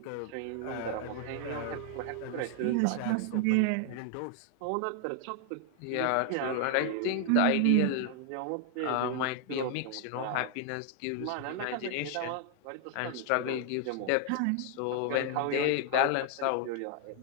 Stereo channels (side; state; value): both; different; correlation 0.00